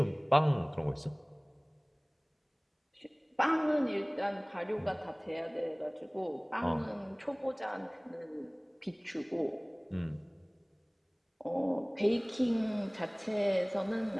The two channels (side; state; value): both; identical; correlation 1.00